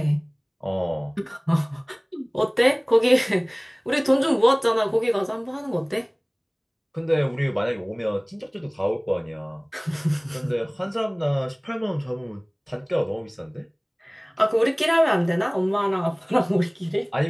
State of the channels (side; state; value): both; identical; correlation 1.00